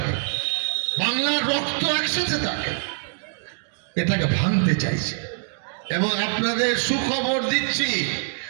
বাংলার রক্ত একসাথে থাকে, এটাকে ভাঙতে চাইছে। এবং আপনাদের সুখবর দিচ্ছি,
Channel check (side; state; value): left; silent; digital silence